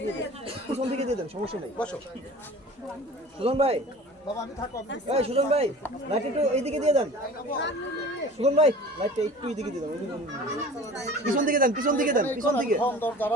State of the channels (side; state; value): both; normal; correlation 0.41